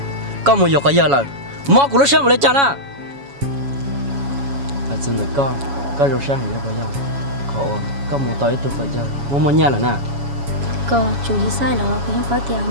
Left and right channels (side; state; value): left; late; 7.2 ms